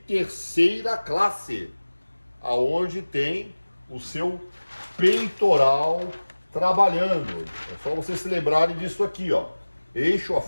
classe, aonde tem o seu peitoral trabalhando. É só vocês se lembrarem disso aqui, ó. Eixo, a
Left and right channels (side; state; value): both; inverted; correlation -1.00